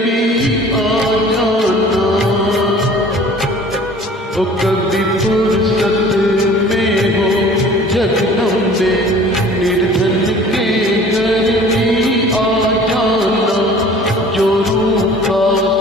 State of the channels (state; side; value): normal; both; correlation 0.48